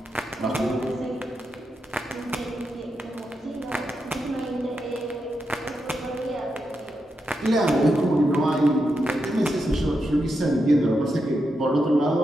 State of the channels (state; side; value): normal; both; correlation 0.85